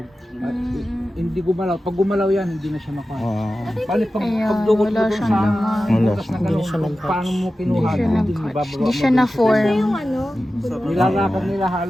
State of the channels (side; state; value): both; normal; correlation 0.94